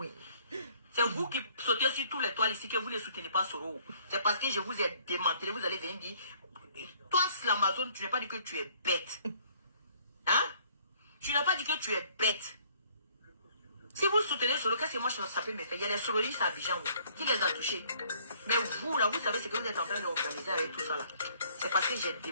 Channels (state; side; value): inverted; both; correlation -0.60